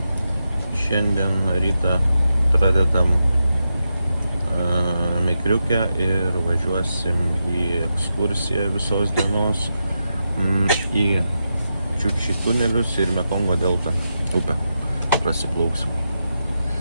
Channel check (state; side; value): inverted; both; correlation -0.87